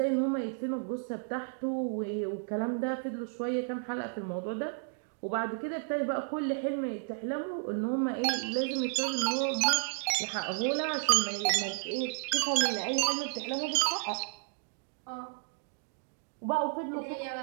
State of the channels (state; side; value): silent; left; digital silence